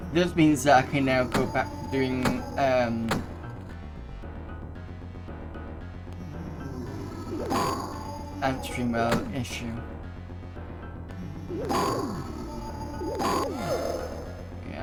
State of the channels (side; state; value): both; identical; correlation 1.00